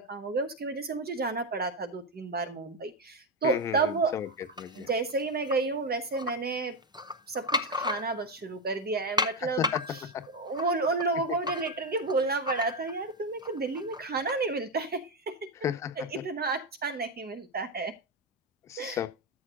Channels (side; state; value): both; normal; correlation 0.08